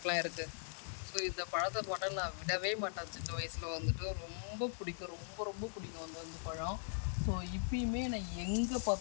இருக்குது. ஸோ இந்த பழத்தை போட்டால் நான் விடவே மாட்டேன். சின்ன வயசில் வந்துட்டு ரொம்ப பிடிக்கும், ரொம்ப ரொம்ப பிடிக்கும் அந்த பழம். ஸோ இப்பயுமே நான் எங்கே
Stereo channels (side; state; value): right; silent; digital silence